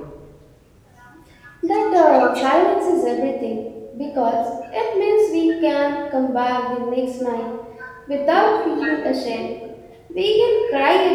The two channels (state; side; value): identical; both; correlation 1.00